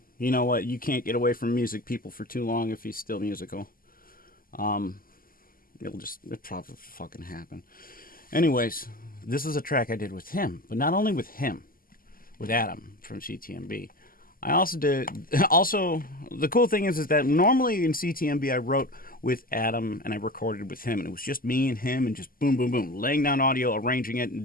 You know what? You can't get away from music people for too long if he's still musical. It'll probably fucking happen. Anyways, this is a track I did with him, but not only with him, with Adam from C.T.M.B. I also the cool thing is that normally in C.T.M.B. I wrote with Adam and I recorded with him, and it was just me and him and just boom, boom, boom, laying down audio, arranging it,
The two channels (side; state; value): right; late; 0.42 ms